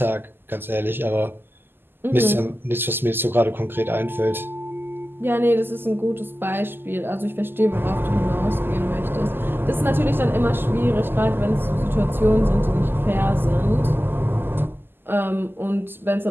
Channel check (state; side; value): late; left; 0.099 ms